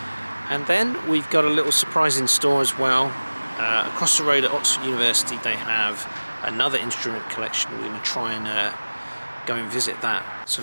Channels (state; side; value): inverted; both; correlation -1.00